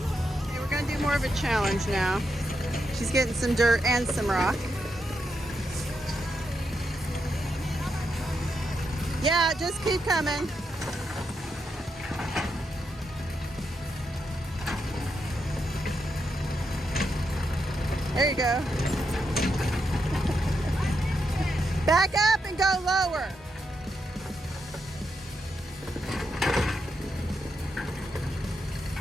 Okay, we're gonna do more of a challenge now. She's getting some dirt and some rock. Yeah, just keep coming. There you go. Back up and go lower.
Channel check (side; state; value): both; normal; correlation 0.83